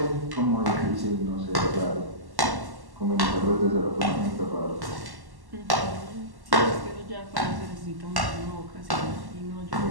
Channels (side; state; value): left; late; 1.1 ms